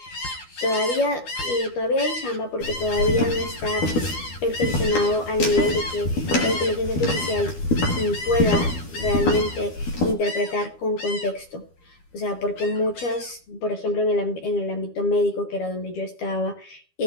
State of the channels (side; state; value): right; late; 12 ms